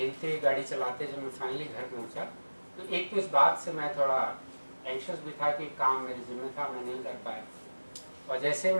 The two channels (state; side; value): inverted; both; correlation -1.00